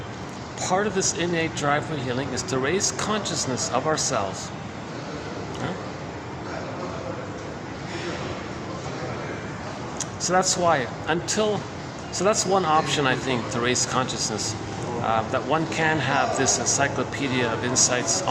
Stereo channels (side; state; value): both; identical; correlation 1.00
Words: Part of this innate drive for healing is to raise consciousness of ourselves. Yeah? So that's why, so that's one option, I think, to raise consciousness, that one can have this encyclopedia of insights